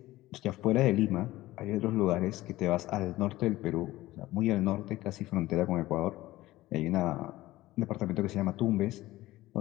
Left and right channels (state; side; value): quieter; right; 17.1 dB